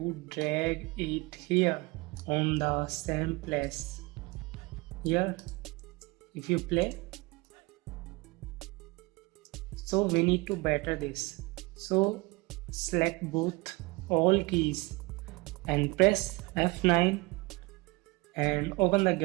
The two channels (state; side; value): quieter; left; 24.8 dB